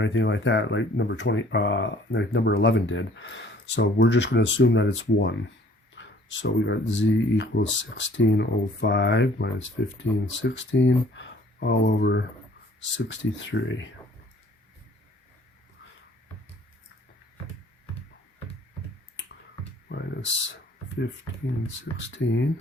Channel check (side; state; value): both; normal; correlation 0.56